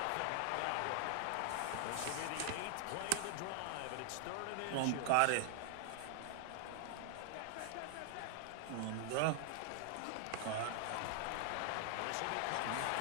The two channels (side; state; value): both; different; correlation 0.00